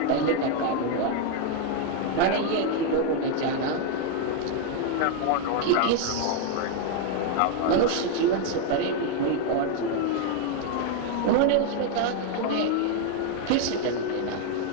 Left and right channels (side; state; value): both; different; correlation 0.00